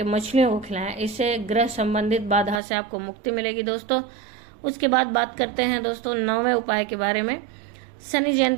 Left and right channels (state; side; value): drops out; left; at 2.6 s